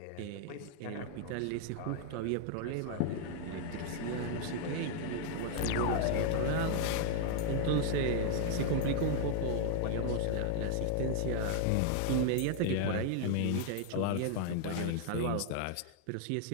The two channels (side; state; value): both; different; correlation 0.00